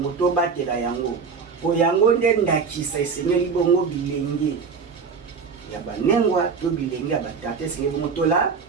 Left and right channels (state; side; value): quieter; left; 5.5 dB